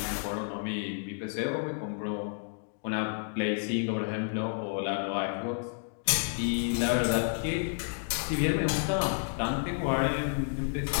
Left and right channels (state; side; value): silent; right; digital silence